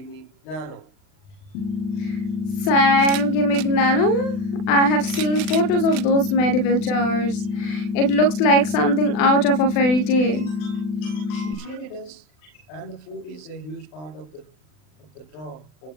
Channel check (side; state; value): right; late; 40 ms